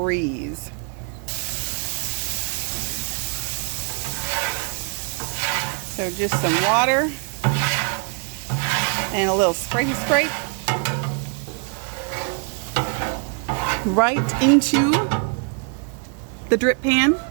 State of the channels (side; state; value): left; quieter; 36.3 dB